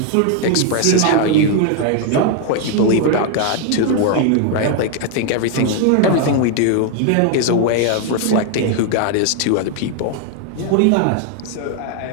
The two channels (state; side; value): different; both; correlation 0.00